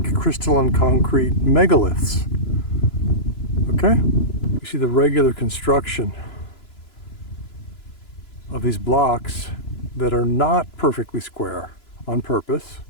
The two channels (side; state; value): right; late; 3.0 ms